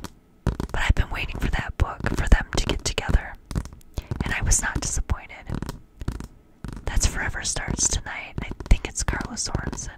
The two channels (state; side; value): identical; both; correlation 1.00